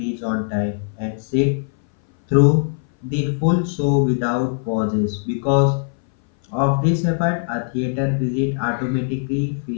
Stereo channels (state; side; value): silent; right; 60 dB below the other